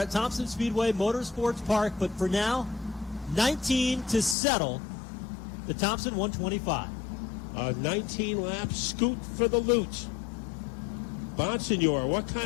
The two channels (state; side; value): drops out; right; at 4.4 s